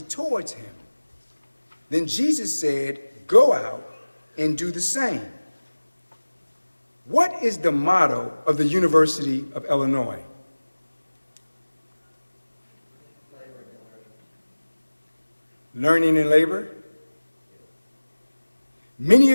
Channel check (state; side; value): inverted; both; correlation -1.00